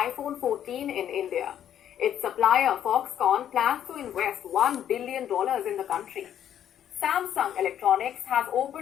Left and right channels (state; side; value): quieter; right; 10.2 dB